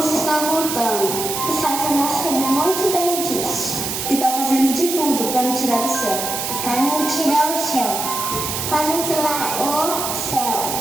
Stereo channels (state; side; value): noise; right; hiss, 3 dB below the sound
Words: está voltando. O Satanás sabe muito bem disso. E está fazendo de tudo para me tirar do céu. Para me tirar o céu. Para me tirar o